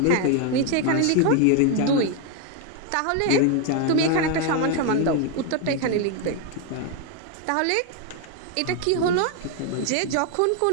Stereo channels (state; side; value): different; both; correlation 0.01